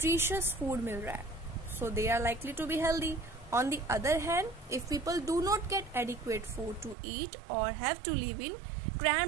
food मिल रहा है. So they are likely to be healthy. On the other hand, if people do not get adequate food to eat or have to live in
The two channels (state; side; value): drops out; left; at 7.0 s